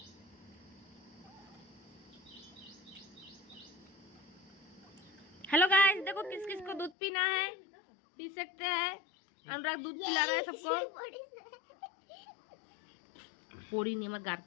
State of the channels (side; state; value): right; drops out; at 6.9 s